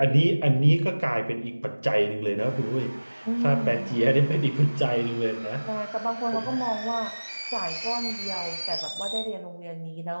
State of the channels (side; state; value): both; inverted; correlation -1.00